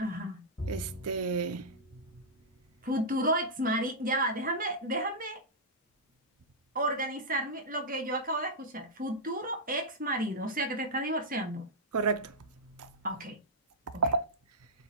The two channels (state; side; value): normal; both; correlation -0.10